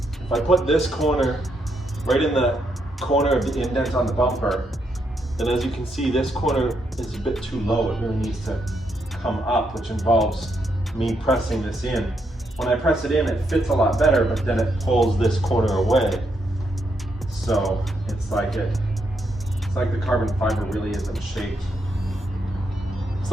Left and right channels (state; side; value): normal; both; correlation 0.78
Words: If I put this corner right in the corner of the indent on the bumper, then as you can see, this corner is a bit too low. It really needs to come up, which involves me pressing this in. When I press it in, it fits a lot better, but then it pulls this corner away. So it's like the carbon fiber really isn't shaped. It's